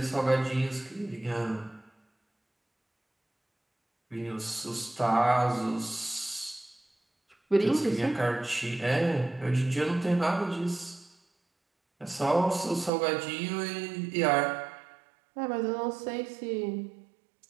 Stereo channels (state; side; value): drops out; left; at 12.9 s